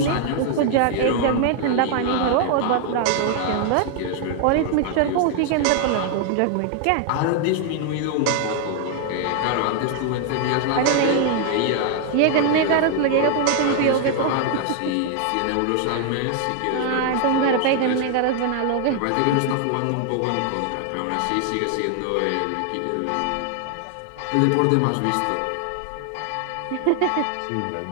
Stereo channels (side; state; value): both; different; correlation 0.00